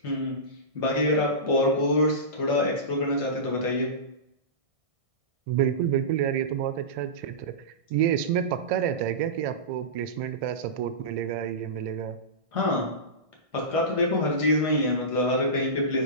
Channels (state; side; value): late; left; 1.6 ms